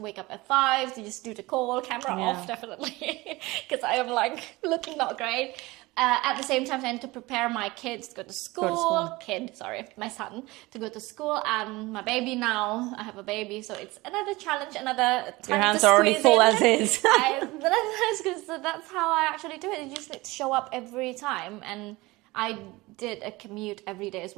up at 5 to just do the call, camera off, definitely. Because I am like looking not great. At the same time, I need to prepare my kids to go to school. My son to go to school, and my baby now. I have a baby, so it's another challenge, another time Your hands to are already squeeze full in. as is. So that's how I actually do it. You just need to show up every time, and I did a commute every day as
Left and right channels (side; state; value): left; quieter; 21.4 dB